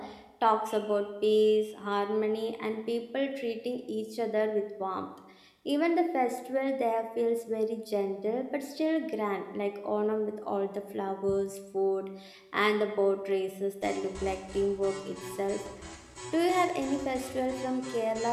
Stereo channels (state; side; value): identical; both; correlation 1.00